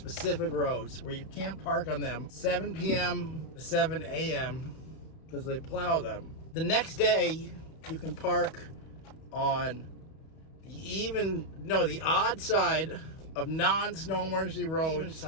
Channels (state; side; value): late; right; 31 ms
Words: roads where you can't park on them 7 p.m. to 7 a.m. because they plow them. The next day, you can park on the odd side of non-snow emergency road